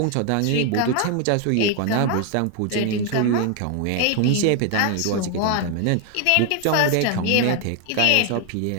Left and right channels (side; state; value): both; different; correlation 0.01